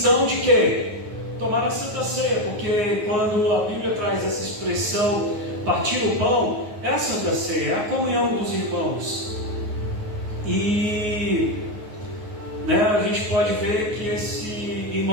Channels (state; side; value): late; left; 9.4 ms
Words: de quê? Tomar a Santa Ceia, porque quando a Bíblia traz essa expressão, partir o pão, é a Santa Ceia, é a comunhão dos irmãos. E a gente pode ver que esse